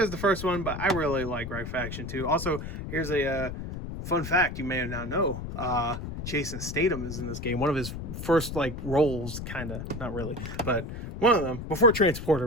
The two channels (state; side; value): noise; left; rumble, 7 dB below the sound